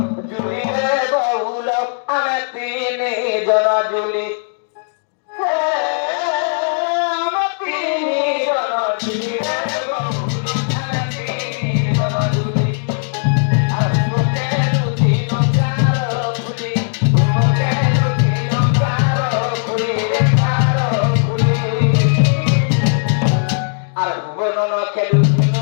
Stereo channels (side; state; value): right; silent; digital silence